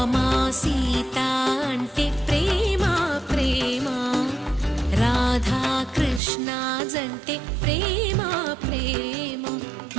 సీత అంటే ప్రేమ ప్రేమ, రాధా కృష్ణ జంటే ప్రేమ ప్రేమ,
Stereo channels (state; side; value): drops out; left; at 6.2 s